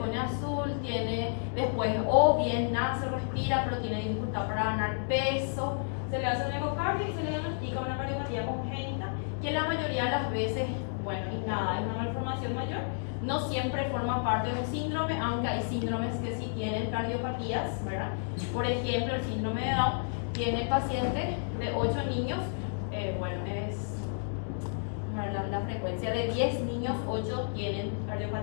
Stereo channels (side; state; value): right; silent; digital silence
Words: azul, tiene después o bien nace, respira, pero tiene dificultad para ganar peso, se le hace un ecocardio y se le diagnostica una cardiopatía congénita, que la mayoría de las veces, bueno, y nada, es una malformación mayor, no siempre forma parte de un síndrome, aunque hay síndromes que sí tienen cardiopatías, ¿verdad? Por ejemplo, el síndrome de Down tiene pacientes de 8 niños, bueno, es la frecuencia de 10 niños, 8 tienen